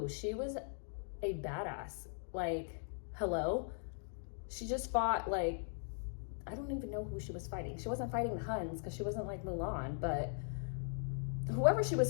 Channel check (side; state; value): right; silent; digital silence